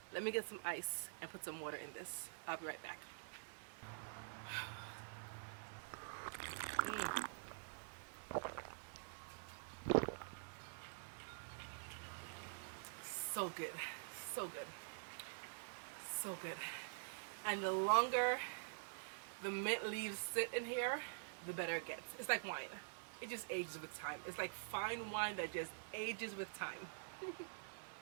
Let me get some ice and put some water in this. I'll be right back. So good, so good, so good. And the longer the mint leaves sit in here, the better it gets. It's like wine. It just ages with time. It's like fine wine that just ages with time.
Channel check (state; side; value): silent; left; digital silence